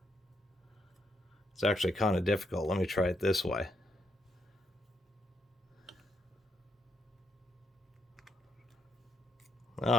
it's actually kind of difficult. Let me try it this way.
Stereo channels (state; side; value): normal; both; correlation 0.77